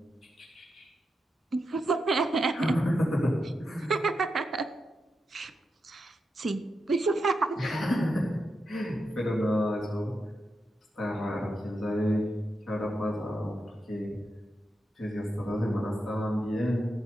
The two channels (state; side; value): normal; both; correlation 0.87